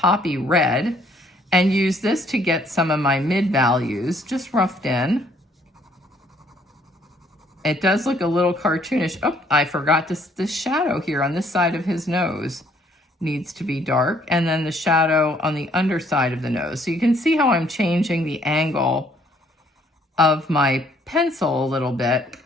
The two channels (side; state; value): both; normal; correlation 0.64